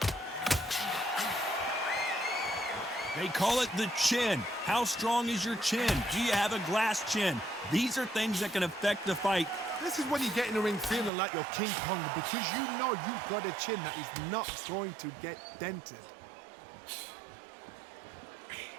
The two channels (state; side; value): drops out; left; at 11.1 s